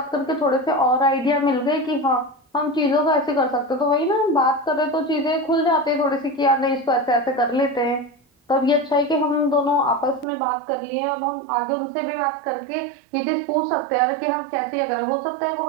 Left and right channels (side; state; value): left; drops out; at 10.2 s